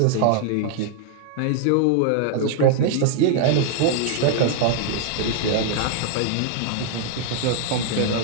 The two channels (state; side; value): different; both; correlation 0.00